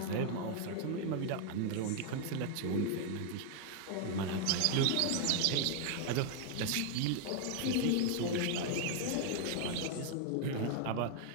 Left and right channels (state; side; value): different; both; correlation 0.00